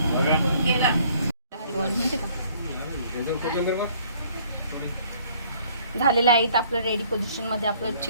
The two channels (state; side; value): inverted; both; correlation -0.59